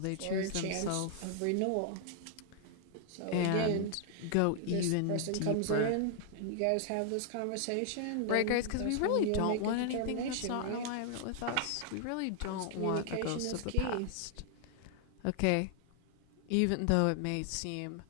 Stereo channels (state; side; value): different; both; correlation 0.00